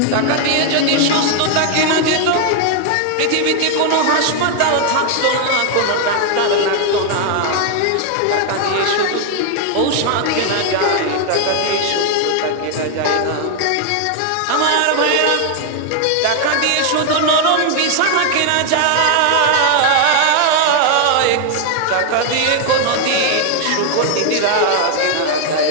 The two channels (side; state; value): both; different; correlation 0.00